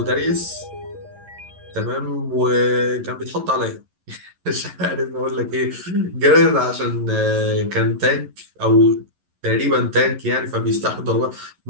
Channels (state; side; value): late; left; 11 ms